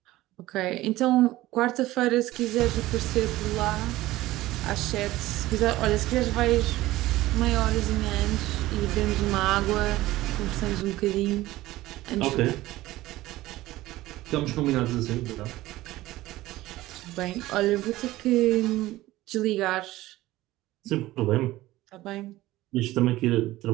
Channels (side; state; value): left; quieter; 17.0 dB